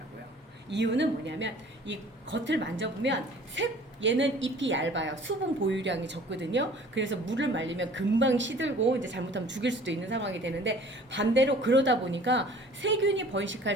이유는 뭐냐면 이 겉을 만져보면 얘는 잎이 얇아요. 수분 보유량이 적거든요. 그래서 물을 말리면 금방 시들고 이제 잘못하면 죽일 수도 있는 상황이 되는데 반대로 그러다 보니까 세균이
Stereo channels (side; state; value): both; normal; correlation 0.49